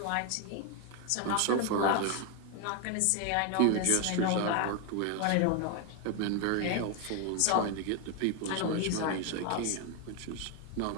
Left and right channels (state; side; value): different; both; correlation 0.01